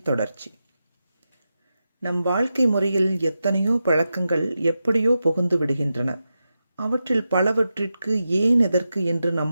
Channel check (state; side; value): inverted; both; correlation -0.90